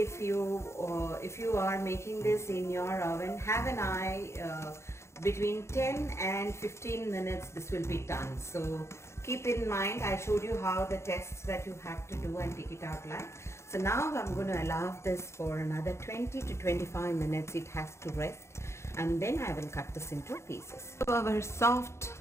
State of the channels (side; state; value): right; late; 0.13 ms